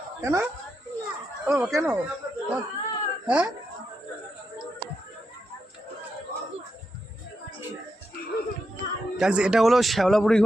কেন ও কেন? হ্যাঁ এটা হলো শ্যাওলাপুরি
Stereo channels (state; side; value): normal; both; correlation 0.85